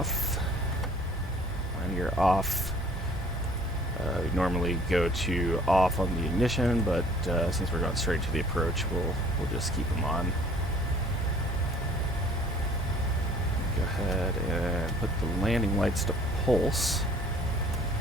When you're off, we normally go to off on the ignition, but since we're going straight to the approach, we'll just keep them on. Go ahead and put the landing lights to pulse.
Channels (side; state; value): both; normal; correlation 0.54